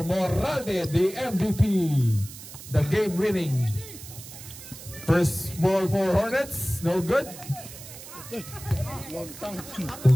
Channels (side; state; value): right; noise; hiss, 14 dB below the sound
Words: Moralde, the MVP. The game winning. First ball for Hornets, no good.